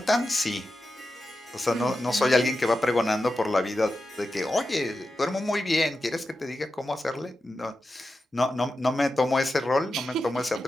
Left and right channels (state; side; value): normal; both; correlation 0.91